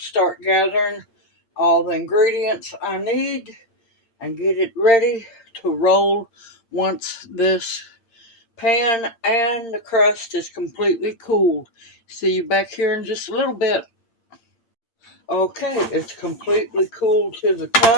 start gathering all the ingredients I need and get it ready to roll once this pan and the crust is completely cooled. See you back here in just a little bit. Okay, it's completely cooled to the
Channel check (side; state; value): right; late; 8.7 ms